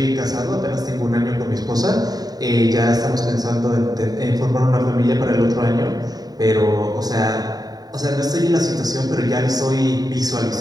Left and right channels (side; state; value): left; late; 0.18 ms